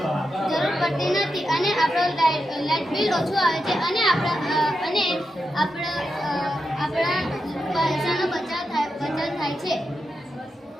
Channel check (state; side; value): normal; both; correlation 0.87